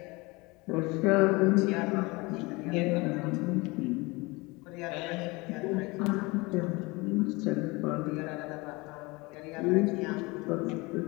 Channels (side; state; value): right; quieter; 24.5 dB